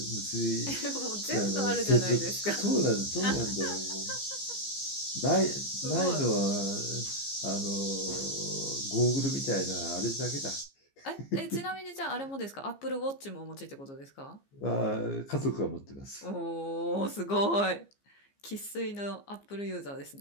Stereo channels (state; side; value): late; right; 15 ms